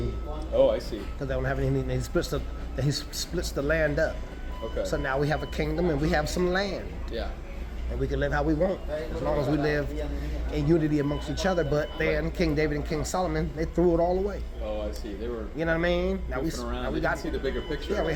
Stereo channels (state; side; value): identical; both; correlation 1.00